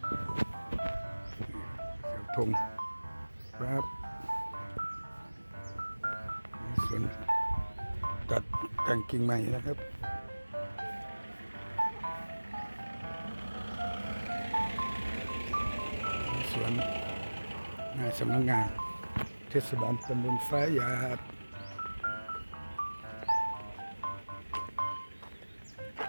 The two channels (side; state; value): both; inverted; correlation -1.00